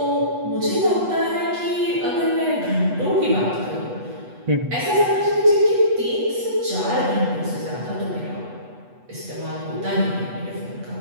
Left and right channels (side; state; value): left; late; 8.2 ms